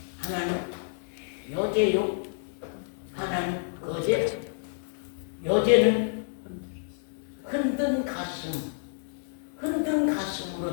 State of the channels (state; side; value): silent; right; digital silence